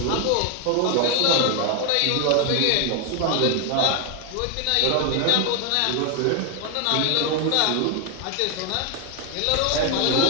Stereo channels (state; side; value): different; both; correlation 0.01